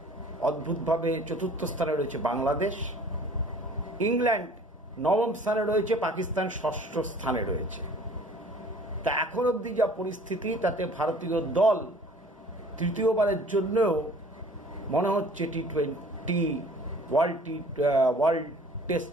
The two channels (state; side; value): normal; both; correlation 0.50